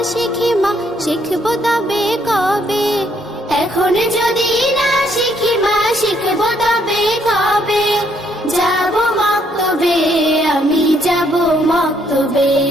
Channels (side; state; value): both; normal; correlation 0.70